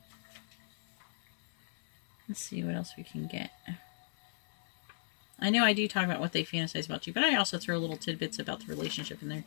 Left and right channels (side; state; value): right; silent; 54 dB below the other